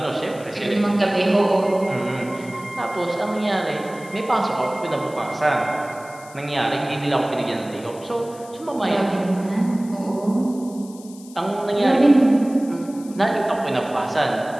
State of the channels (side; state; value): left; noise; hiss, 21 dB below the sound